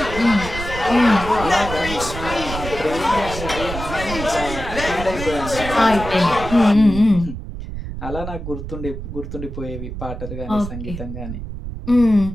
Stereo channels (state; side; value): noise; right; rumble, 8 dB below the sound